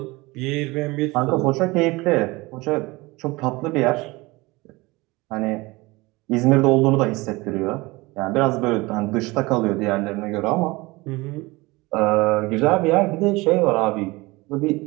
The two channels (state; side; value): quieter; left; 22.5 dB